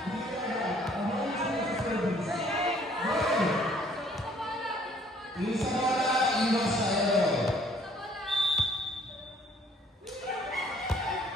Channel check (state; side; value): normal; both; correlation 0.60